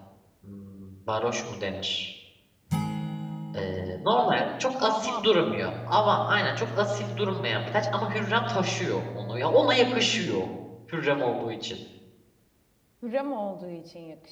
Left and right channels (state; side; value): identical; both; correlation 1.00